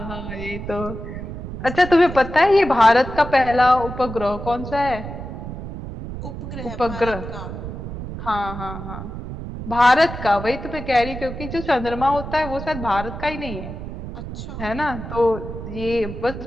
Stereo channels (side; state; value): right; noise; rumble, 9 dB below the sound